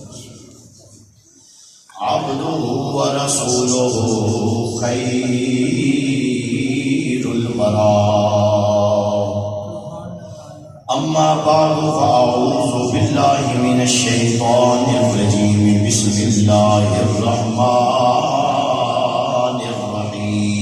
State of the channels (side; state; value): both; identical; correlation 1.00